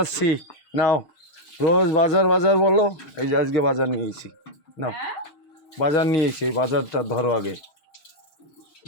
আসছি, নাও। রোজ বাজার বাজার বলো, এই যে আজকে বাজার নিয়েছি, নাও। বাজার নিয়েছি, এই বাজারটা ধরো আগে।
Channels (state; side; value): late; right; 6.6 ms